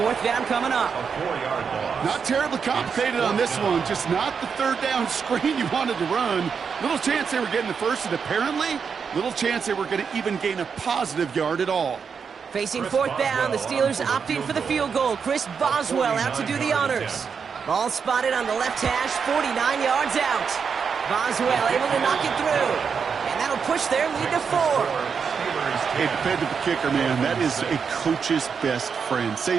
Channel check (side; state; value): left; quieter; 6.2 dB